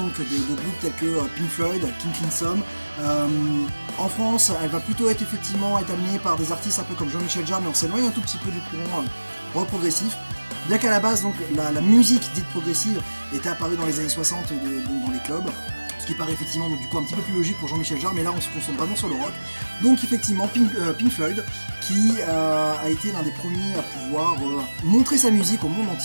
de groupes tels que Pink Floyd, King Crimson. En France, elle va plutôt être amenée par des artistes un peu comme Jean-Michel Jarre, mais on s'éloigne un tout petit peu du courant rock progressif. Bien qu'à la base, donc, la musique dite progressive était apparue dans les années 60 dans les clubs, ce qui paraît effectivement donc, du coup un petit peu plus logique pour Jean-Michel Jarre, mais là on se concentre vraiment sur le rock. Donc effectivement Pink Floyd qui a été l'un des premiers à pouvoir montrer sa musique au monde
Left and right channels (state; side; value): inverted; both; correlation -1.00